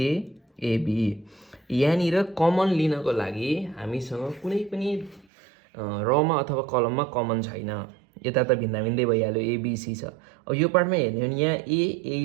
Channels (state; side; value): drops out; left; at 5.2 s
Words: AB. यहाँनिर कमन लिनको लागि हामीसँग कुनै पनि रमा अथवा कलममा कमन छैन, यता त भिन्दा भिन्दै भइहाल्यो एबिसी छ। अब यो पार्टमा हेर्ने हो भने यहाँ